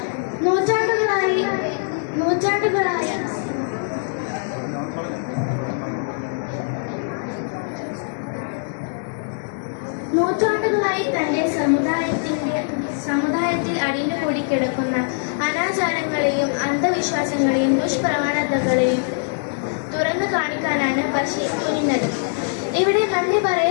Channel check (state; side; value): silent; right; digital silence